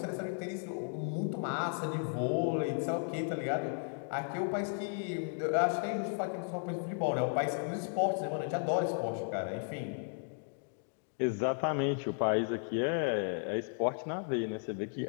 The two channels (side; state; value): right; silent; 55 dB below the other